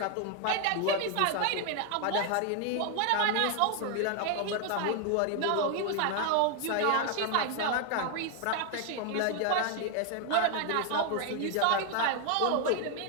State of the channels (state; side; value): different; both; correlation 0.00